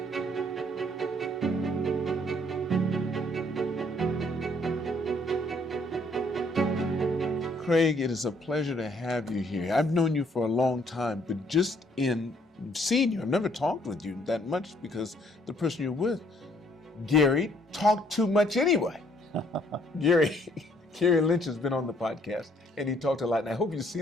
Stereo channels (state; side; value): normal; both; correlation 0.65